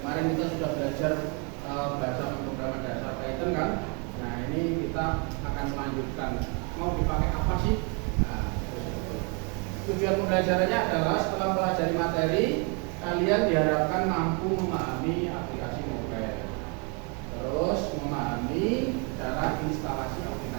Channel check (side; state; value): left; quieter; 34.2 dB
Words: kita sudah belajar bahasa pemrograman dasar Python kan. Nah ini kita akan melanjutkan. Mau dipakai apa sih? Nah, tujuan pembelajarannya adalah setelah pelajari materi, kalian diharapkan mampu memahami aplikasi mobile, terus memahami cara instalasi